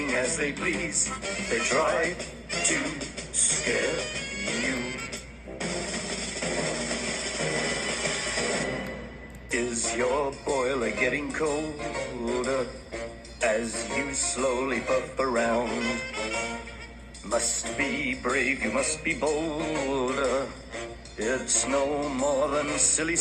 as they please. They try to scare you. Is your boiler getting colder as you slowly puff around? Must be brave, you must be bolder. It's no more than silly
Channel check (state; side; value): identical; both; correlation 1.00